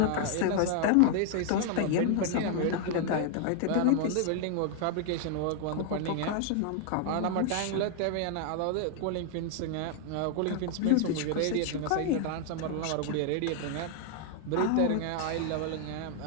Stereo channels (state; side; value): different; both; correlation 0.00